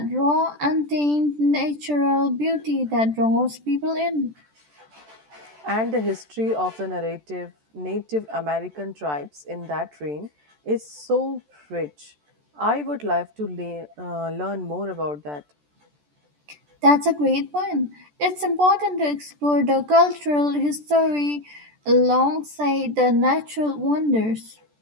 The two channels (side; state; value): left; late; 14 ms